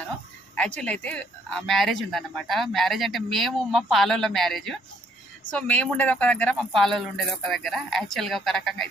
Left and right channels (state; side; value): normal; both; correlation 0.66